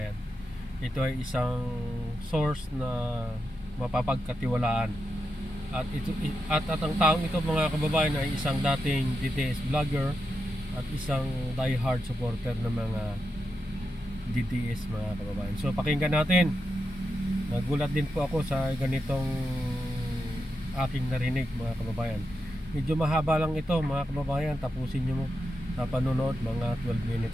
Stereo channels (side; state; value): both; normal; correlation 0.87